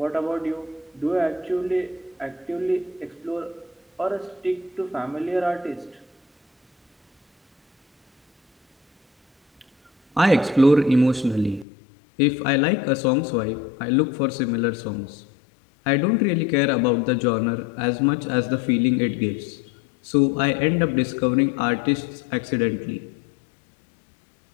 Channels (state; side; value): drops out; right; at 11.7 s